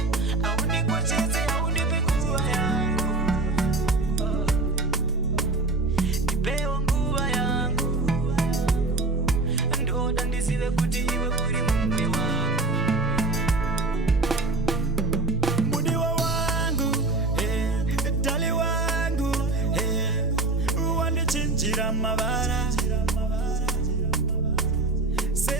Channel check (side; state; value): left; quieter; 3.3 dB